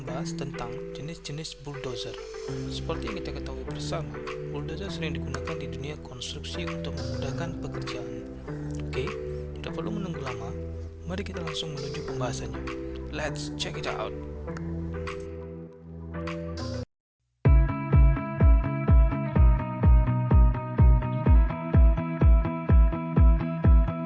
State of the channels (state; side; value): identical; both; correlation 1.00